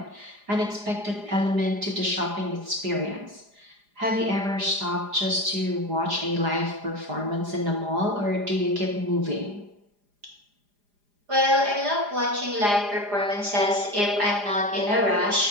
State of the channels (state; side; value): late; left; 4.9 ms